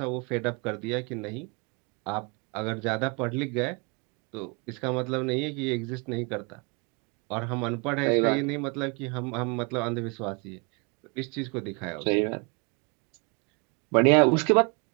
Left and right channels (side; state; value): left; quieter; 32.3 dB